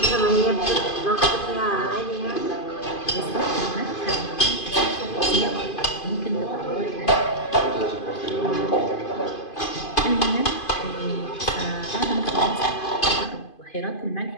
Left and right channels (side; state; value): right; late; 2.5 ms